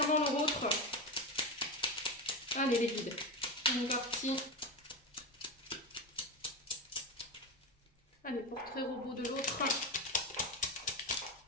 leur autre. Allez les guides, on est parti. Allez, portrait robot de l'autre.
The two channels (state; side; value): normal; both; correlation 0.17